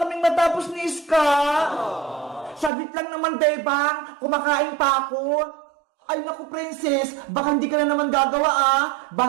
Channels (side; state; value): left; drops out; at 2.7 s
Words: kaming matapos ni Iska! Saglit lang naman, Bebang! Kumakain pa ako! Ay naku, Princess! Baka hindi ka na naman gagawa ah!